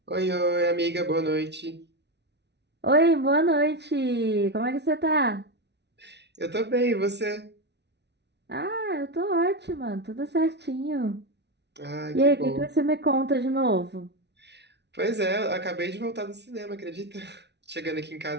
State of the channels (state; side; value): late; left; 0.50 ms